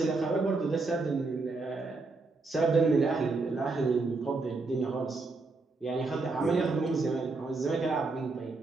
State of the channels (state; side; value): quieter; left; 3.7 dB